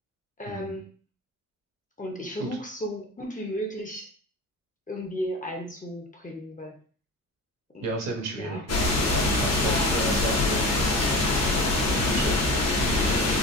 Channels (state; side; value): normal; both; correlation 0.31